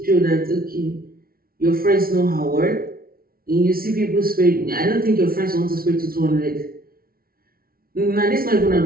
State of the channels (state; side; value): late; left; 0.43 ms